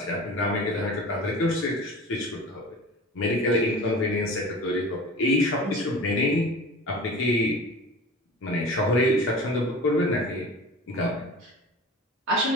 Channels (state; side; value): normal; both; correlation 0.37